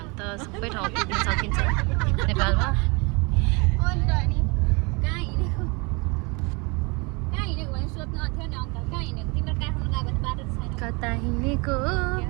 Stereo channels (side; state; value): left; quieter; 29.1 dB